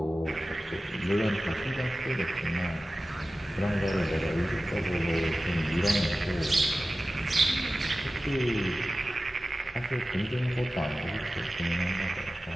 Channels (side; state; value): both; normal; correlation 0.95